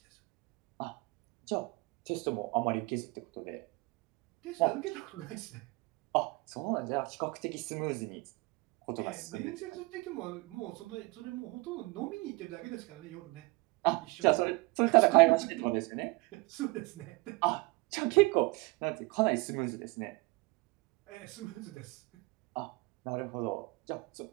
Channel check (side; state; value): left; quieter; 25.2 dB